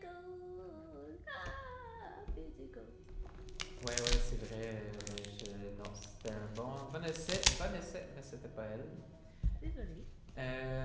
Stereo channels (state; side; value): identical; both; correlation 1.00